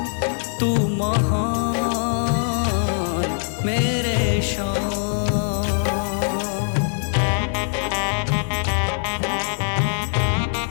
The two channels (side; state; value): right; silent; digital silence